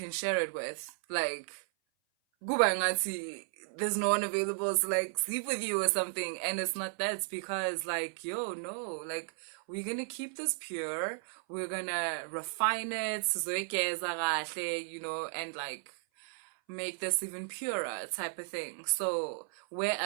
share it with. Like kuba ngathi there's no one available to like sleep with you or something, and it's not that. It's because like, yo, no, like we're gonna keep this pure, we're gonna refine it, you know, and like make this even purer type of thing. So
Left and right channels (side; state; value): left; silent; 55 dB below the other